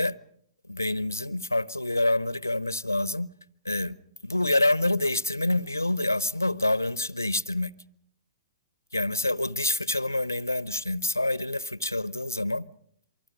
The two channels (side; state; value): both; inverted; correlation -0.79